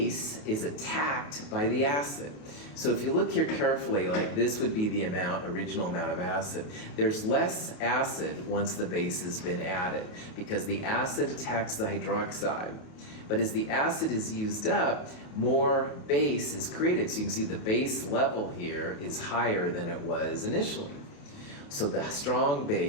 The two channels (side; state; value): right; late; 28 ms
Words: is attacked by the acid. So if you look here carefully, like this would be the original amount of acid. There's less acid once the base has been added because the acid attacks the hydroxide. But as the acid is used up, more base is created. So you can see the base level here is higher than it was initially. So the strong